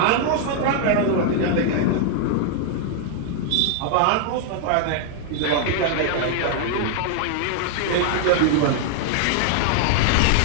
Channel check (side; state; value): both; different; correlation 0.00